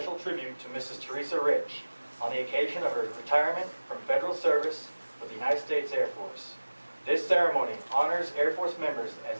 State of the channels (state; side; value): inverted; both; correlation -1.00